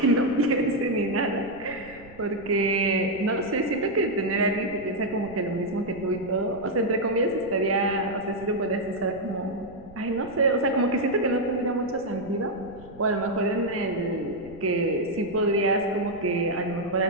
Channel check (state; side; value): noise; right; rumble, 21 dB below the sound